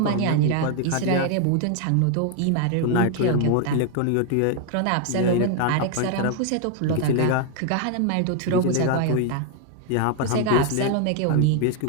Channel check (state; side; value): different; both; correlation 0.00